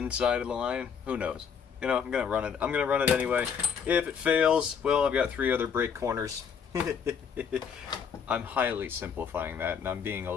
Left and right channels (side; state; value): right; quieter; 7.0 dB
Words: of the line. Who knows? You know, I'm going to run it. I'm going to run it anyway. If it fails, well, I've got 3 other brake corners. I'm highly simplifying that, and I'm being a